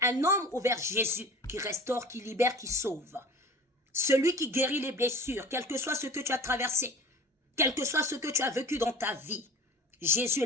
un homme ou vers Jésus qui restaure, qui libère, qui sauve? Celui qui guérit les blessures, quel que soit ce que tu as traversé, quel que soit ce que tu as vécu dans ta vie. Jésus est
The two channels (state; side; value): normal; both; correlation 0.40